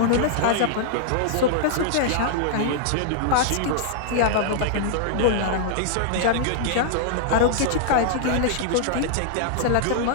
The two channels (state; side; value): different; both; correlation -0.01